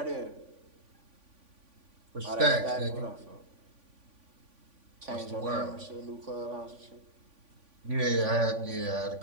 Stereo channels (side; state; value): left; late; 3.5 ms